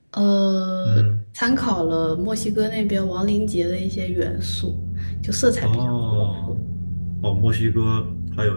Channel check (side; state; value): both; inverted; correlation -1.00